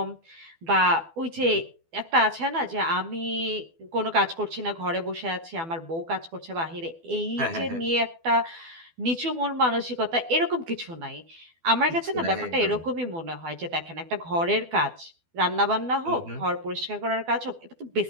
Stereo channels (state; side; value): late; left; 12 ms